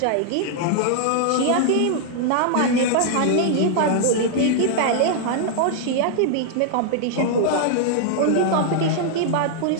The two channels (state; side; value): different; both; correlation -0.01